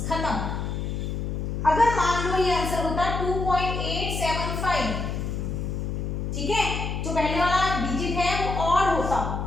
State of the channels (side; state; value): left; noise; hum, 3 dB below the sound